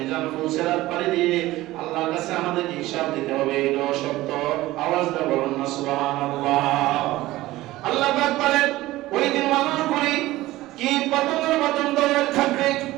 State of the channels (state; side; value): quieter; left; 17.3 dB